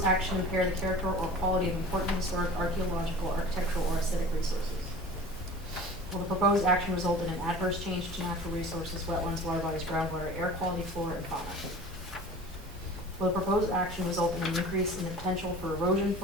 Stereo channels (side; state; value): both; normal; correlation 0.40